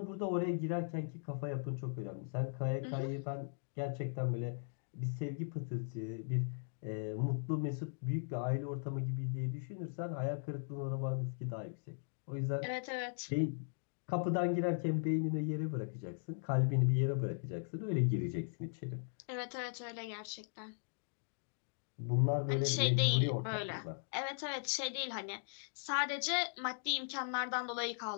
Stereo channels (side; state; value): right; silent; digital silence